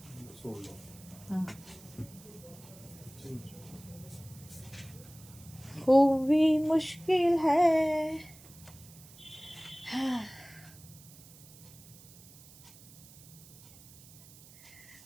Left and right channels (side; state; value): right; noise; hiss, 21 dB below the sound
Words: সোল্ড হ্যাঁ। খুবই মুশকিল হ্যায়,